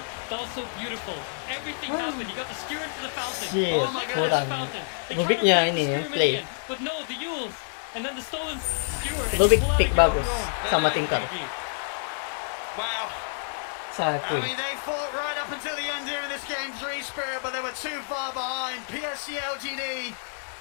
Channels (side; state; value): right; silent; digital silence